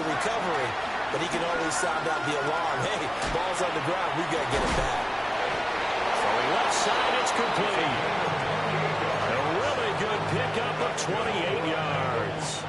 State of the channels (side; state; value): left; noise; hum, 25 dB below the sound